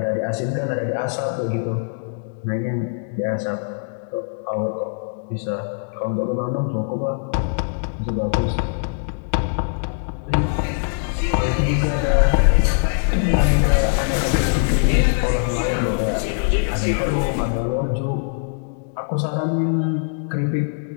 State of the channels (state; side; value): silent; right; digital silence